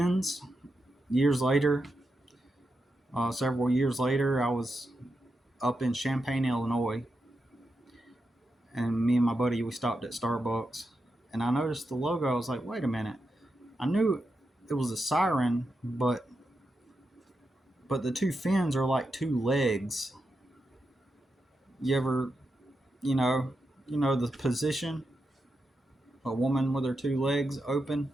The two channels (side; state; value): both; normal; correlation 0.87